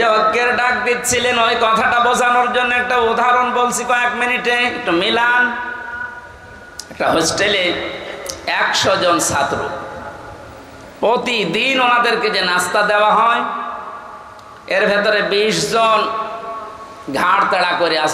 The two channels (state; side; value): identical; both; correlation 1.00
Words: ঐক্যের ডাক দিচ্ছিলেন, ওই কথাটা বোঝানোর জন্য একটা উদাহরণ বলছি কয়েক মিনিটে, একটু মিলান। একটা হোস্টেলে 100 জন ছাত্র, প্রতিদিন ওনাদেরকে যে নাস্তা দেওয়া হয়, এর ভেতরে 20 জন ঘাড় তাড়া করে